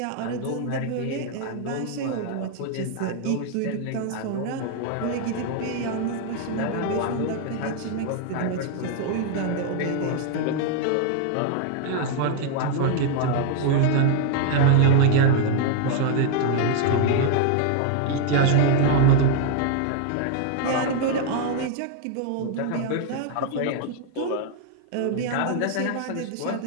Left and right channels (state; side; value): different; both; correlation 0.00